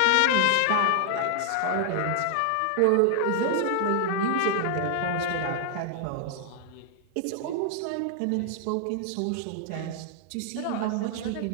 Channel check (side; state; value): both; different; correlation 0.00